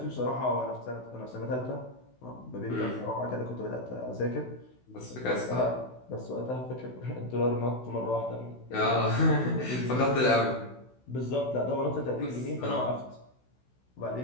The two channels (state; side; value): late; right; 16 ms